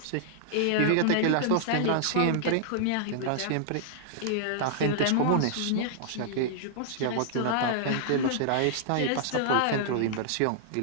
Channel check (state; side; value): different; both; correlation -0.01